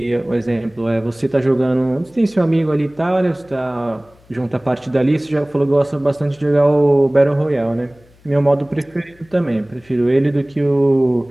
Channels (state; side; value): noise; left; hum, 29 dB below the sound